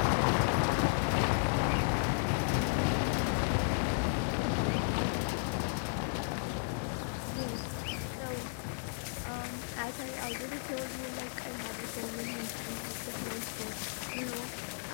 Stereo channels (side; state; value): right; silent; 55 dB below the other